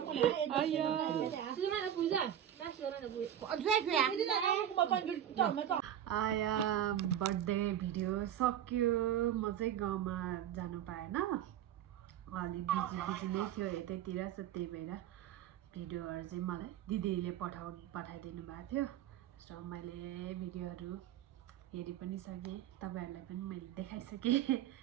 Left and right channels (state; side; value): quieter; left; 10.6 dB